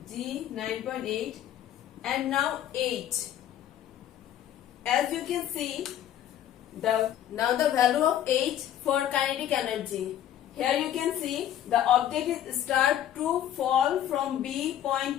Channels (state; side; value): quieter; right; 11.3 dB